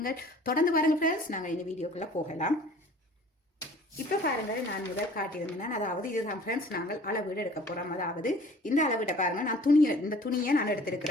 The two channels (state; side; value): normal; both; correlation 0.50